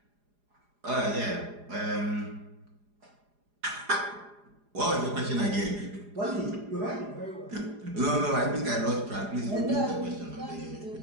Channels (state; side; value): late; left; 4.9 ms